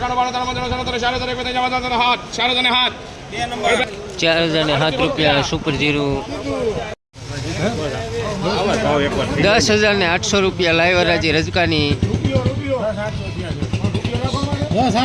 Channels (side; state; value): both; identical; correlation 1.00